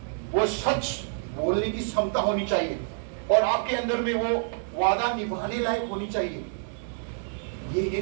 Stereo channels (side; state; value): left; silent; 60 dB below the other